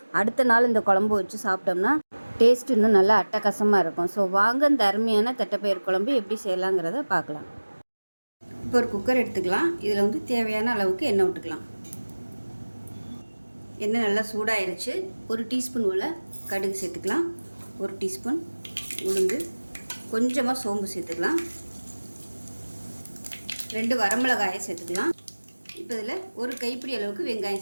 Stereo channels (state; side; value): inverted; both; correlation -1.00